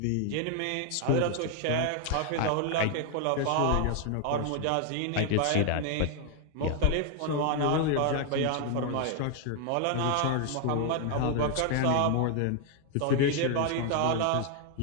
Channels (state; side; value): different; both; correlation 0.00